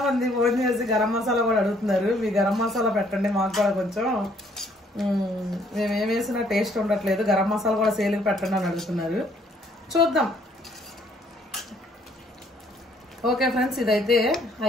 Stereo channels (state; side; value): normal; both; correlation 0.64